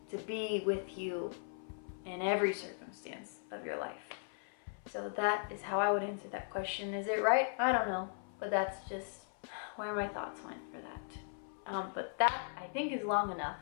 to be with you in every circumstance of your life. So that is how I would answer that question. Is it right? I don't know, but that's just where my thoughts went for that. But that I think is long enough.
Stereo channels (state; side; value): silent; right; 52 dB below the other